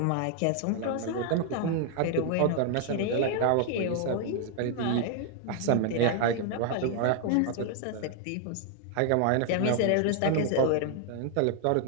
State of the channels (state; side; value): different; both; correlation 0.00